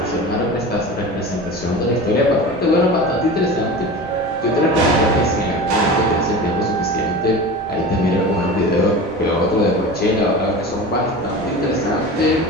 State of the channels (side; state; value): both; normal; correlation 0.32